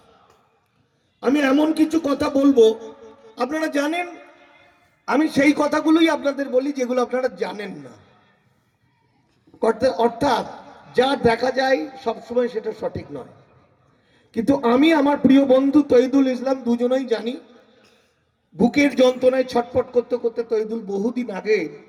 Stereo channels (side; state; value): both; identical; correlation 1.00